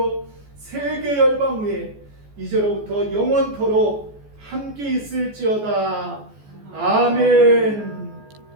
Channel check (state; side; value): late; left; 14 ms